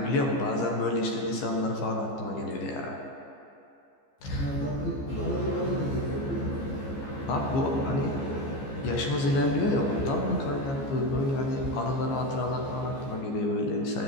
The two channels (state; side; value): late; right; 15 ms